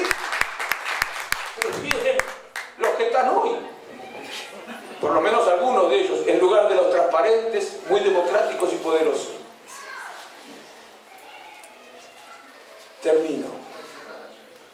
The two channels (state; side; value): identical; both; correlation 1.00